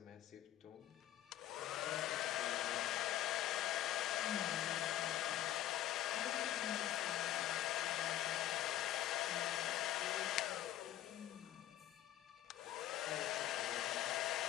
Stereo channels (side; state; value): right; quieter; 12.6 dB